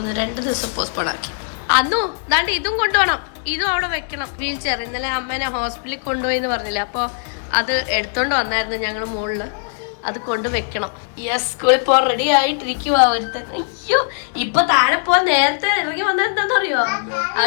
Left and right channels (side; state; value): right; silent; 66 dB below the other